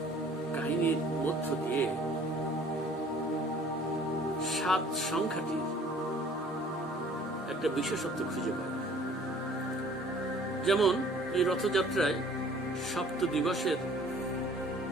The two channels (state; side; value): normal; both; correlation 0.53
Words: কাহিনীর মধ্য দিয়ে 7 সংখ্যাটির একটা বিশেষত্ব খুঁজে পাই। যেমন এই রথযাত্রায় 7 দিবসের